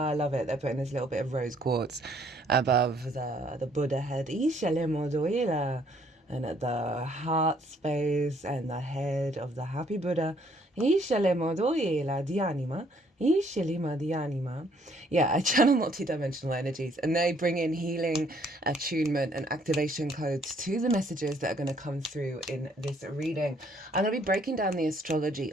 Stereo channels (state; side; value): normal; both; correlation 0.65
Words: I love it. They're putting this little bit of rose quartz above the Buddha head. Isce le moduela. And at the heart space and the head of the happy Buddha, Isce le moduela di anima. Isce lima di anima. Yeah, I channel multi-dimensional energies and they bring in healing, attunement and activation codes to the messages that are going to come through in this reading. I'm going to be breaking down the astrology